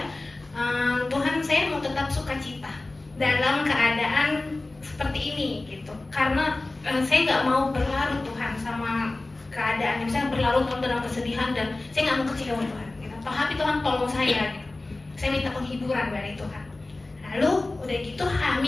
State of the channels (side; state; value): right; quieter; 3.0 dB